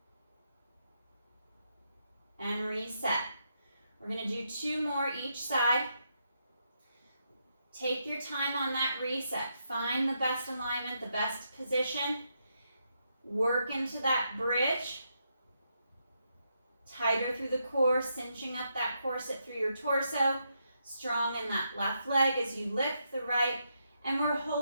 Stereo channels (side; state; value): both; inverted; correlation -0.81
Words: And reset. We're going to do 2 more each side. Take your time on that reset. Find the best alignment, the best position. Work into that bridge. Tighter through the core, cinching up that corset through your torso. Strong in that left leg as you lift the right. And we're